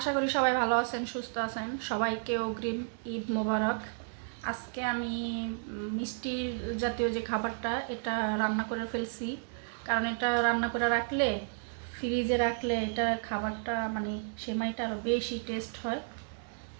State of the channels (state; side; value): silent; left; digital silence